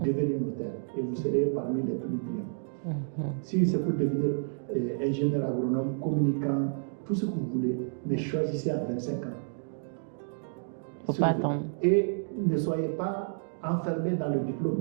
notaire et vous serez parmi les plus brillants. Si c'est pour devenir ingénieur agronome, communicant, tout ce que vous voulez, mais choisissez à 25 ans. Il ne faut pas attendre. Et ne soyez pas enfermé dans le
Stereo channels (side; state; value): left; silent; digital silence